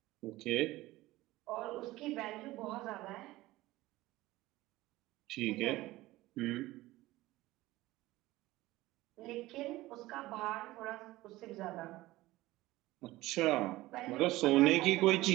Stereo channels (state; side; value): quieter; left; 18.0 dB